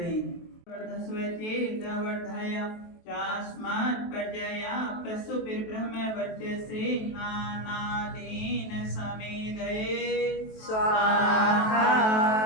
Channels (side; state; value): right; late; 23 ms